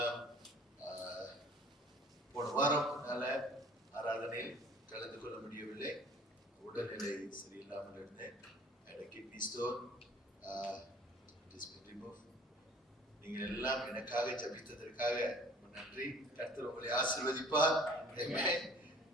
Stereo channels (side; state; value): both; normal; correlation 0.51